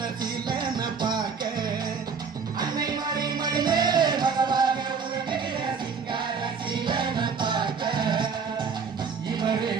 சீலன பார்க்க, அன்னை மாறி மடி மேலே மகவாக உறங்குகிற சிங்கார சீலன பார்க்க, இவரே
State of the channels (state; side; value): quieter; left; 5.7 dB